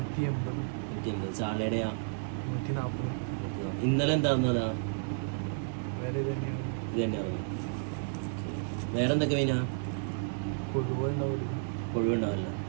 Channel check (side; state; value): left; silent; digital silence